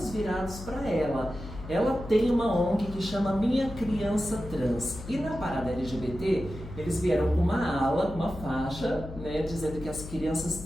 virados para ela. Ela tem uma ONG que chama Minha Criança Trans. E na parada LGBT, eles vieram com uma ala, uma faixa, né, dizendo que as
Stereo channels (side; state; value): left; noise; hum, 12 dB below the sound